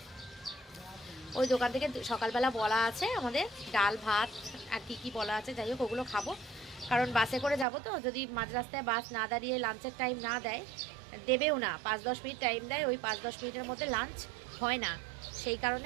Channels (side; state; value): left; drops out; at 7.7 s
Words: ওই দোকান থেকে সকালবেলা বলা আছে আমাদের ডাল ভাত আর কি বলা আছে, যাই হোক ওগুলো খাবো। কারণ বাসে করে যাব, তো যদি মাঝ রাস্তায় বাস না দাঁড়িয়ে লাঞ্চের টাইম না দেয়, দেবেও না, 5-10 মিনিট টাইম দেয়, ওই 5-10 মিনিটের মধ্যে লাঞ্চ হয় না। সেই কারণে